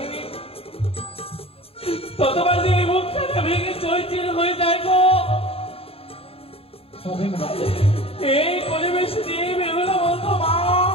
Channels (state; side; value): late; right; 0.28 ms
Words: ততবার যে মুখখানা ভেঙে চৈচির হয়ে যায় গো। এই পরিবেশে দিয়ে বেরোলো বলতো, মা